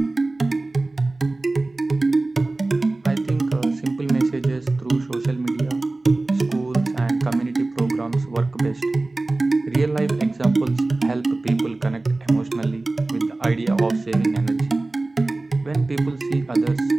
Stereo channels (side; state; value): left; quieter; 3.1 dB